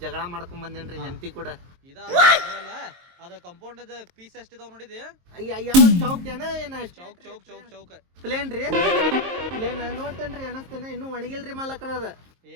ಜಗಳ ಮಾಡ್ಕೊಂಡ್ ಬಂದೇನ್ರಿ ಹೆಂಡತಿ ಕೂಡ. ಇದಲ್ಲ ಅದ ಕಂಪೌಂಡ್ ಪೀಸ್ ಎಷ್ಟಿದಾವ್ ನೋಡಿದಿ? ಯಾವ ಚೌಕ್ ಏನ ಚೌಕ್ ಚೌಕ್ ಚೌಕ್ ಚೌಕ್ ಪ್ಲೇನ್ ರೀ? ಪ್ಲೇನ್ ನೋಡ್ತೇನ್ರಿ ಅನಸ್ತೇನ. ಇನ್ನೂ ಒಣಗಿಲ್ರಿ ಮಾಲಕ್ರ ಅದ.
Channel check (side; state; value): left; late; 23 ms